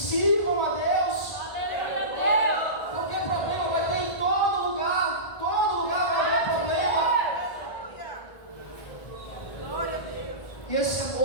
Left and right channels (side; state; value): right; late; 1.5 ms